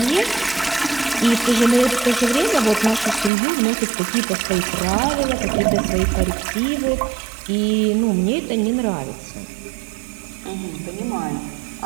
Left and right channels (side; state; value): left; drops out; at 3.3 s